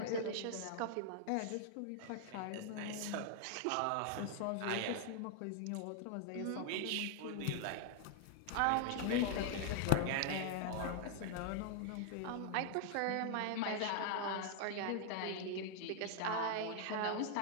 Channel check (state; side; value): different; both; correlation 0.00